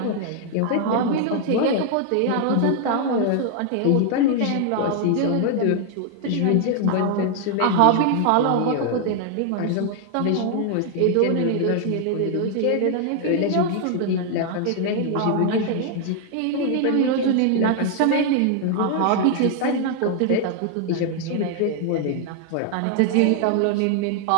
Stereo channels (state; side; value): different; both; correlation 0.00